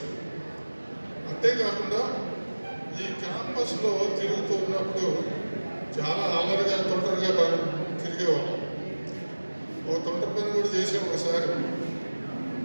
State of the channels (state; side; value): inverted; both; correlation -1.00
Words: అంతేకాకుండా ఈ క్యాంపస్లో తిరుగుతున్నప్పుడు చాలా అల్లరిగా తొందరగా తిరిగేవాళ్ళం. ఒక తొందర పని కూడా చేసాం ఒకసారి.